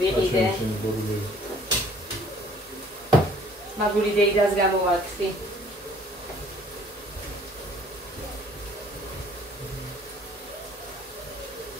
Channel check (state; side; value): normal; both; correlation 0.56